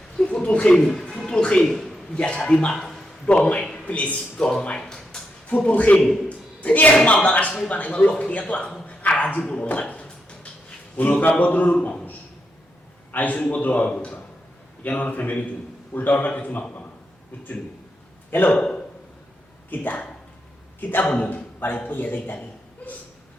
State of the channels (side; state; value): both; normal; correlation 0.83